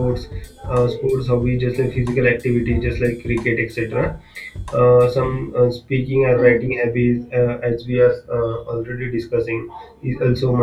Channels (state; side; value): identical; both; correlation 1.00